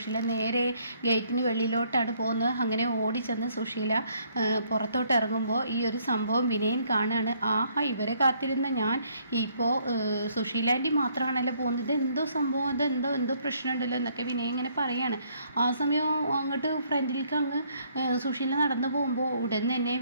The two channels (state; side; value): inverted; both; correlation -0.67